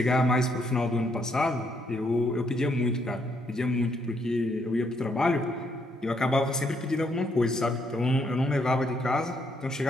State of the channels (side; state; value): both; normal; correlation 0.73